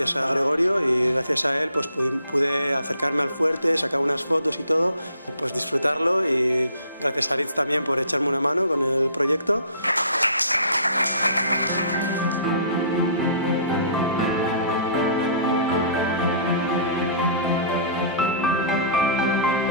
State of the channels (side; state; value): both; inverted; correlation -0.52